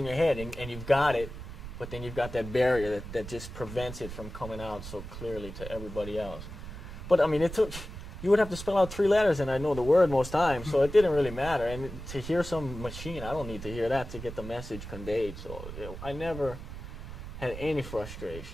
your head, and you've got it, but then you've got that barrier that just prevents it from coming out so clearly to everybody else. But I mean, you would have to spell out 3 letters, and I know the word most times, so it didn't really matter. And to hear some machine, I don't need to hear that to get the message conveyed. So I never had any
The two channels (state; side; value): noise; right; rumble, 10 dB below the sound